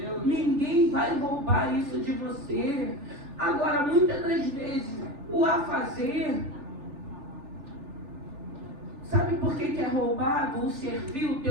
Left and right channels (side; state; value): left; late; 3.4 ms